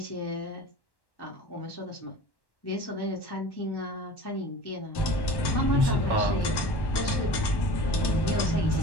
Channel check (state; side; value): late; right; 1.1 ms